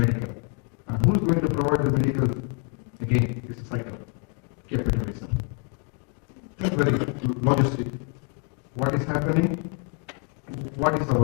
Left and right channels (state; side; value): quieter; right; 36.6 dB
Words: And who's going to provide the medical? Again, it's a cycle. Capitalism. Think very logistic. What is happening? What is our